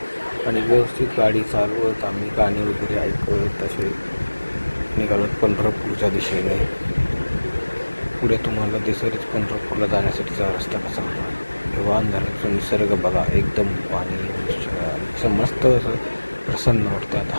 आणि व्यवस्थित गाडी चालवत आम्ही गाणी वगैरे ऐकत तसे निघालो पंढरपूरच्या दिशेने. पुढे तुम्हाला दिसेलच पंढरपूरला जाण्यासाठीचा रस्ता कसा होता. वान धरणाचा निसर्ग बघा, एकदम पाणी असं मस्त असं प्रसन्न वाटतं. आता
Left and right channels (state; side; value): inverted; both; correlation -1.00